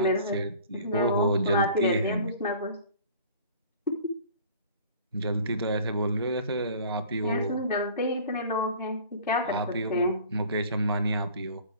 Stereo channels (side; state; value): both; inverted; correlation -0.47